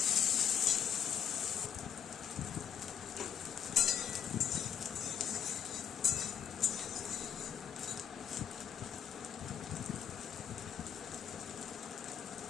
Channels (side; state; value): right; quieter; 8.3 dB